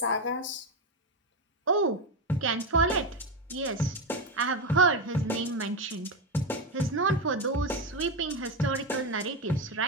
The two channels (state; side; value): normal; both; correlation 0.12